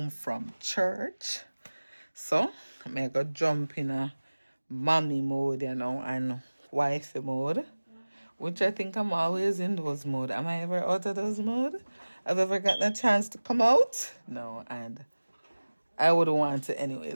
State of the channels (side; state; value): both; inverted; correlation -1.00